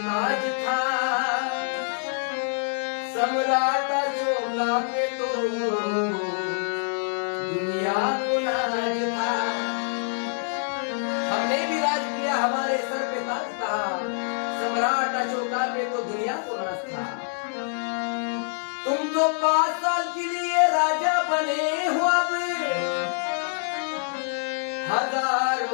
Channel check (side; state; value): right; silent; digital silence